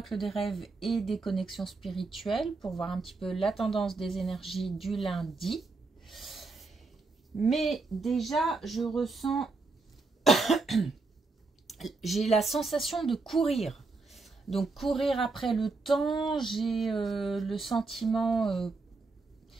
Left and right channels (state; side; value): quieter; left; 3.8 dB